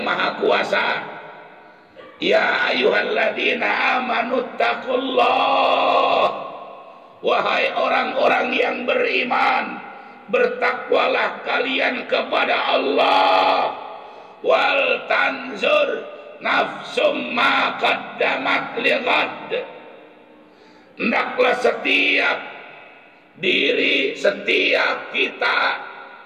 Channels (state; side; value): identical; both; correlation 1.00